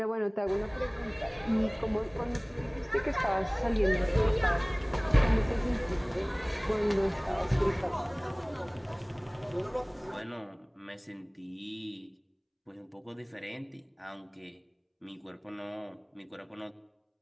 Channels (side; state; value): both; identical; correlation 1.00